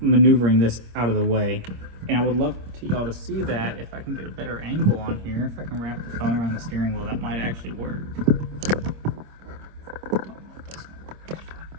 maneuvering this out of the way. And I would love to y'all to see that if I can get a better angle on here. If I can wrap the phone around the steering wheel, that might actually work. Don't know if that's gonna work.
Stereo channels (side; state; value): left; late; 26 ms